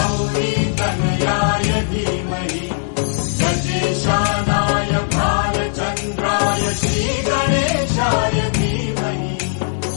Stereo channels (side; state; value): right; silent; digital silence